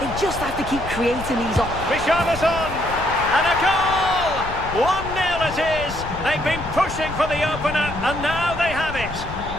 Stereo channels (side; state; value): left; noise; rumble, 11 dB below the sound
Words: just have to keep creating these Richarlison! And a goal! 1-0 it is. They've been pushing for the opener, and now they have it.